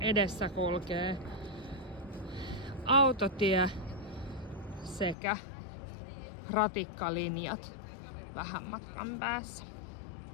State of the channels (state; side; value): drops out; right; at 5.2 s